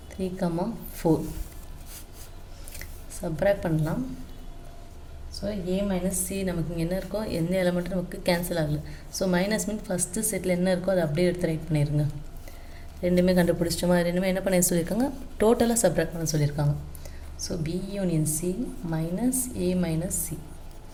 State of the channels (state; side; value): identical; both; correlation 1.00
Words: 3, 4 subtract பண்ணலாம். ஸோ A minus C நமக்கு இங்கே என்ன இருக்கோ எந்த எலமெண்ட்டும் நமக்கு கேன்சல் ஆகலை. So minus mean first settle என்ன இருக்கோ அதை அப்படியே எடுத்து ரைட் பண்ணிடுங்க. ரெண்டுமே கண்டுபிடிச்சோமா, ரெண்டுமே என்ன பண்ண சொல்லியிருக்காங்க, டோட்டலாக சப்ராக்ட் பண்ண சொல்லியிருக்காங்க. So B union C minus A minus C